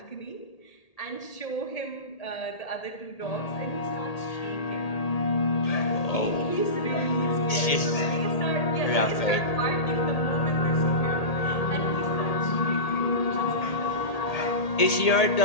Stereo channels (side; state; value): right; late; 1.8 ms